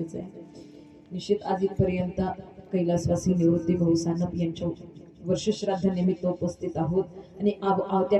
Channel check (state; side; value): identical; both; correlation 1.00